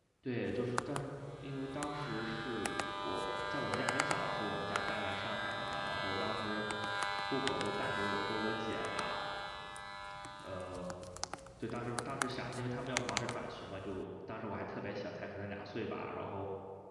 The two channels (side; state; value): both; identical; correlation 1.00